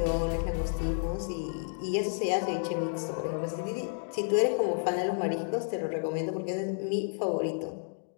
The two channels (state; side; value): silent; right; digital silence